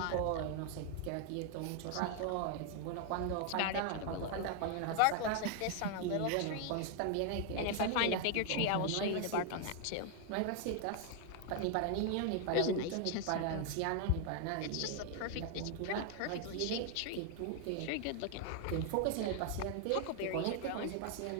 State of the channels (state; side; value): different; both; correlation 0.00